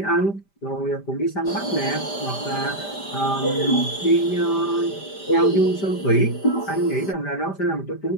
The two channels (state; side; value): late; right; 5.1 ms